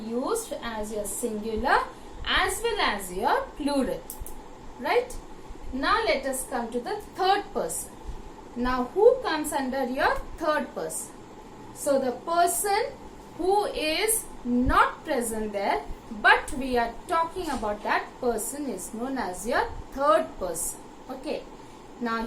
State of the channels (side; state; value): both; identical; correlation 1.00